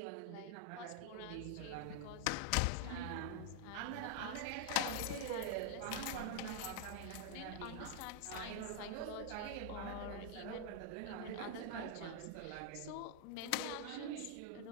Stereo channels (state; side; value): different; both; correlation 0.00